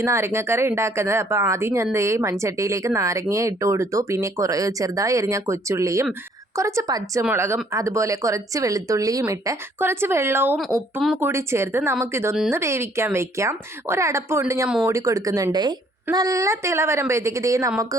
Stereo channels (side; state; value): both; normal; correlation 0.63